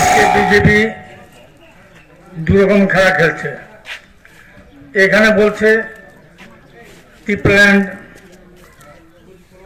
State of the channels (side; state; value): both; identical; correlation 1.00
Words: BJP দুরকম খেলা খেলছে। এখানে বলছে টিপ্ল্যান্ড